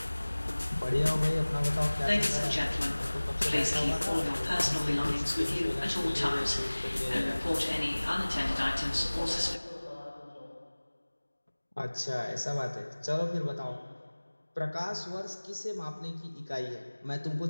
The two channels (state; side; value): inverted; both; correlation -1.00